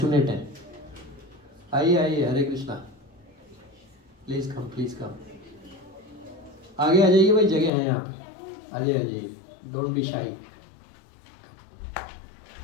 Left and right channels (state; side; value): drops out; right; at 7.7 s